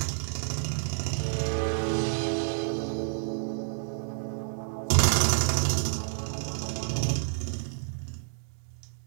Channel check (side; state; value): left; silent; digital silence